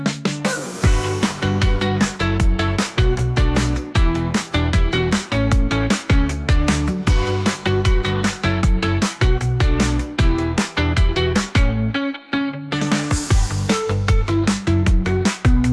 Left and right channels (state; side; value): identical; both; correlation 1.00